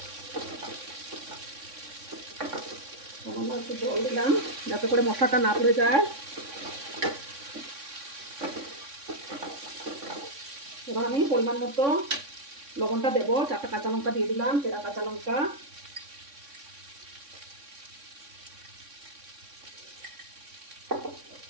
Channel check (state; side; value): late; left; 3.6 ms